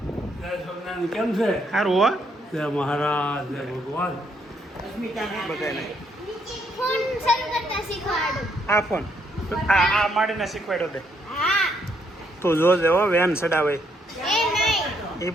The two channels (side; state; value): both; normal; correlation 0.73